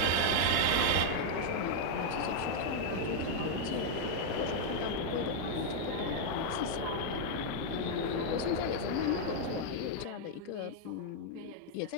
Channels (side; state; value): both; different; correlation 0.00